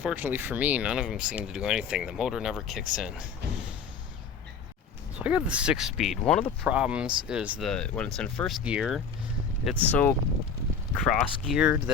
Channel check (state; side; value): quieter; right; 6.0 dB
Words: for me, none of them seem to do anything. The motor never kicks in. So I got the 6-speed. One of the problems is when it's in first gear, it's so cross-geared